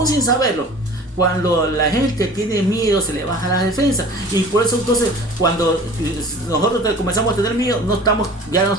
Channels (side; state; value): both; normal; correlation 0.43